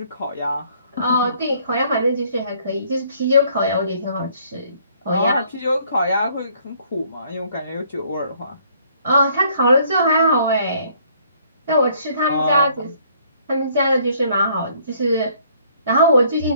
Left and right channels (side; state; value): both; inverted; correlation -0.62